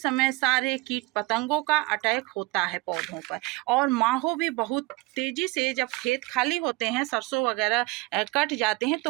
सारे कीट पतंगों का अटैक होता है पौधों पर, और माहो भी बहुत तेज़ी से, जब खेत खाली होते हैं, सरसों वगैरह कट जाते हैं,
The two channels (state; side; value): quieter; left; 23.3 dB